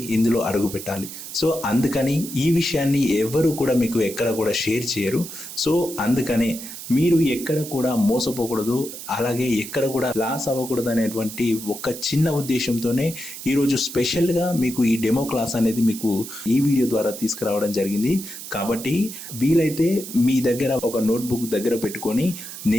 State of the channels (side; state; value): right; noise; hiss, 11 dB below the sound